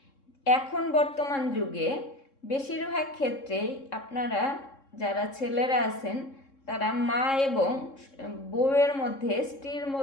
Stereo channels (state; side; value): late; right; 3.7 ms